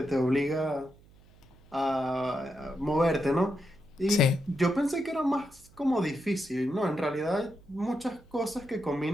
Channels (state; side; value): noise; right; hum, 26 dB below the sound